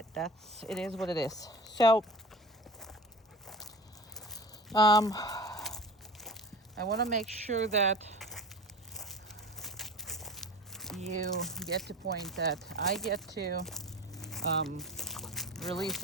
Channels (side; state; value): both; normal; correlation 0.36